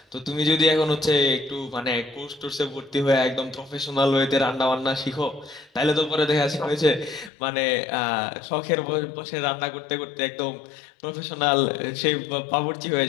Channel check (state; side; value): drops out; right; at 7.3 s